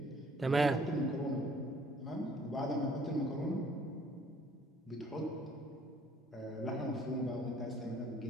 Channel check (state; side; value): normal; both; correlation 0.58